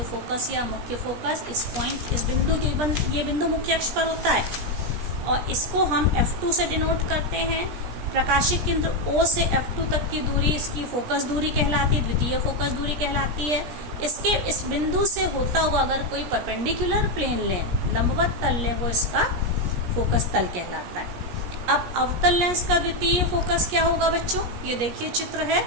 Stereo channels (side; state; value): left; late; 17 ms